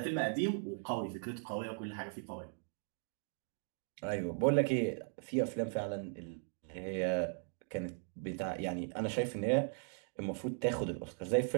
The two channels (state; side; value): silent; left; 52 dB below the other